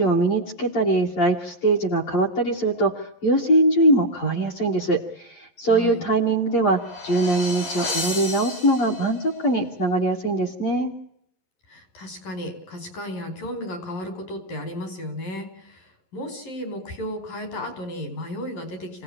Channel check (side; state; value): right; late; 11 ms